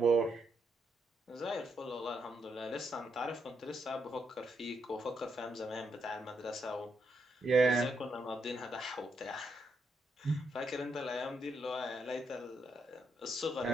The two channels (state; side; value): normal; both; correlation 0.79